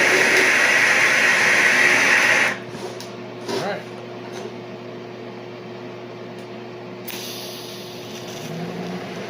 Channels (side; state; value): both; identical; correlation 1.00